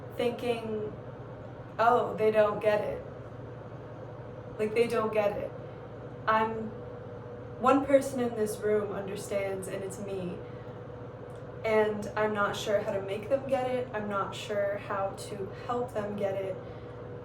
thinking, oh, they don't get it. Like, they don't get it. One person in this room understands, and it's me. And I'm not sure how to make them get it. I'm not sure how to help them get it.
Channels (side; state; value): both; identical; correlation 1.00